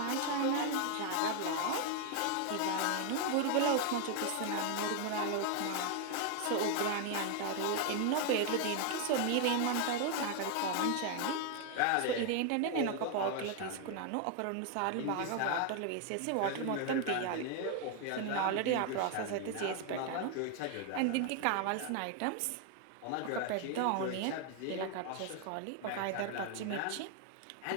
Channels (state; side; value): different; both; correlation 0.00